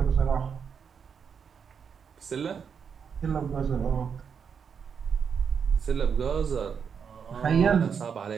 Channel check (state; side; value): quieter; left; 6.8 dB